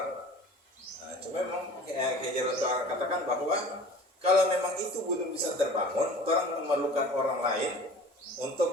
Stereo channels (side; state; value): both; normal; correlation 0.43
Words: Nah, cuma memang Hajar katakan bahwa kalau memang itu belum bisa terbangun, orang memerlukan orang lain